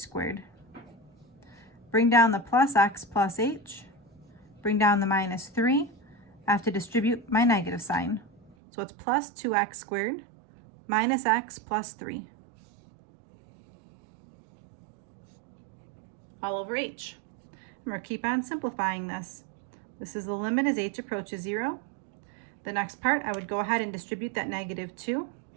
Bring down the plus x plus h, bring down the minus 3. I have to distribute my negative sign. So it's plus 2x squared minus x plus 3. All over h. And we'll keep on simplifying this. This is the limit as h approaches 0. The next part, I would go ahead and distribute that negative 2.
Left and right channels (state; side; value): drops out; left; at 8.6 s